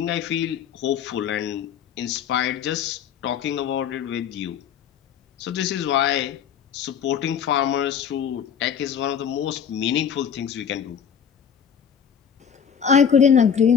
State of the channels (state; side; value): quieter; right; 7.7 dB